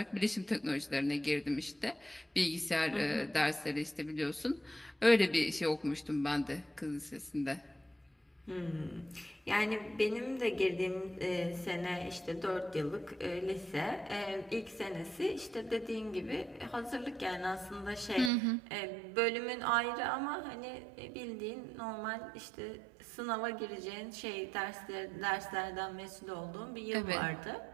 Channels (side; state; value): left; drops out; at 18.3 s